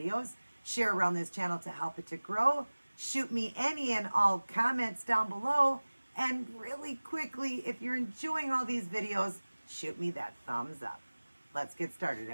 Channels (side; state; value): both; inverted; correlation -1.00